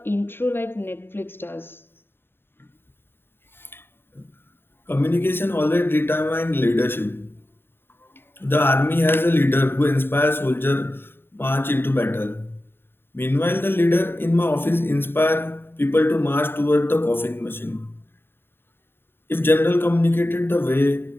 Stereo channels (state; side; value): late; right; 0.11 ms